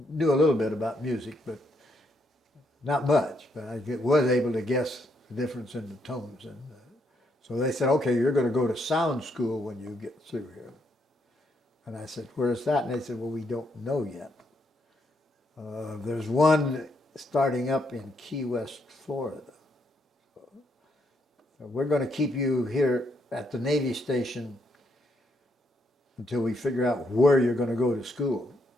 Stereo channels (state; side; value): normal; both; correlation 0.76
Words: knew a little bit about music, but not much. But I was able to guess the difference in the tones. And so they said, okay, you're going to go to sound school when you get through here. And I said, where's that? And they said, well, we don't know yet. There's one starting up in Key West, Florida. So we're going to keep you here at the Navy station until we figure out where you're going to go to school.